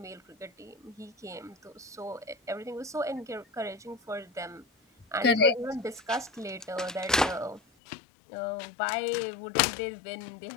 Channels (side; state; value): right; drops out; at 7.6 s